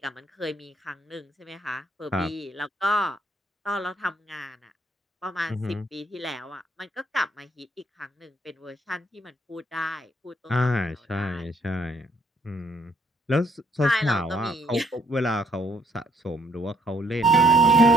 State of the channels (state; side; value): normal; both; correlation 0.67